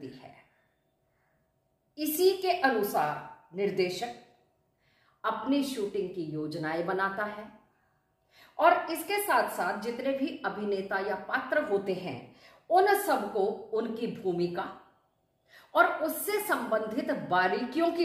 है। इसी के अनुसार निर्देशक अपनी शूटिंग की योजनाएं बनाता है और इसके साथ साथ जितने भी अभिनेता या पात्र होते हैं, उन सबको उनकी भूमिका और उससे संबंधित बारीकियों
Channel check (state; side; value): identical; both; correlation 1.00